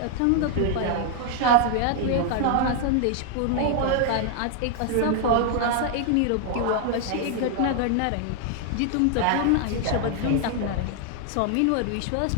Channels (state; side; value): different; both; correlation 0.00